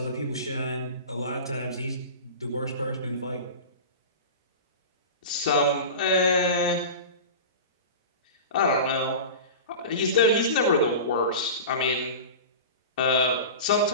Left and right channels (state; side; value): inverted; both; correlation -0.31